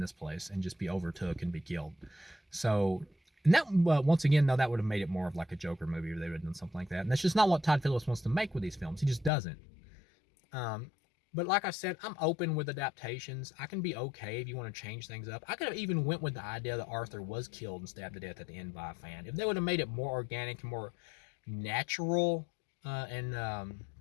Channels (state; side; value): drops out; right; at 9.3 s